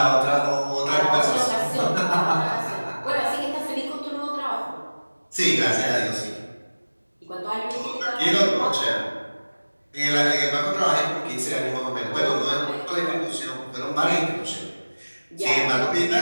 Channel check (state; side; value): inverted; both; correlation -1.00